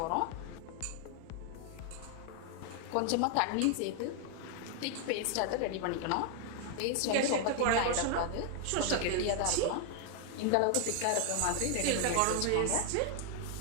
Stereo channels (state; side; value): different; both; correlation 0.00